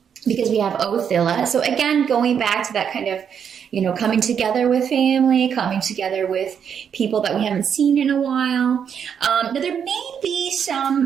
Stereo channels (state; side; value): quieter; left; 7.7 dB